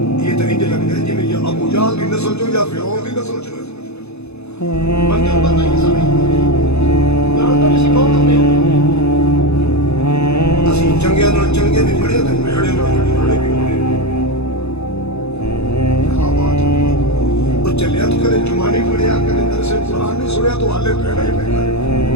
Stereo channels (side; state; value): right; late; 0.80 ms